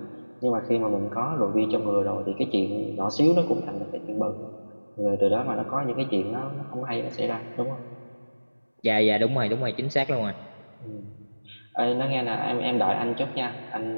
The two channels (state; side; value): inverted; both; correlation -1.00